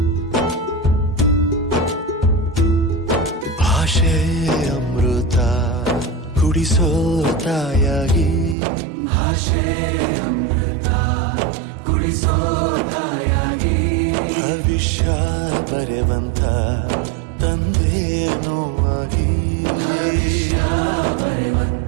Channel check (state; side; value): drops out; left; at 8.6 s